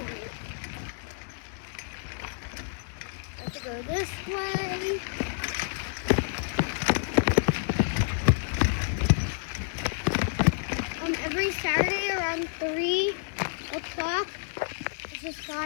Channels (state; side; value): silent; right; digital silence